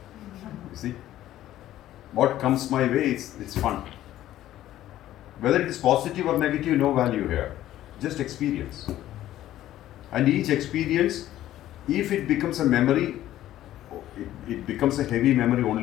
You see? What comes my way, it's fun. Whether it is positive or negative, no value here. Just experience. And each experience, if it becomes a memory, it becomes a heavy memory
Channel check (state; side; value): quieter; right; 13.4 dB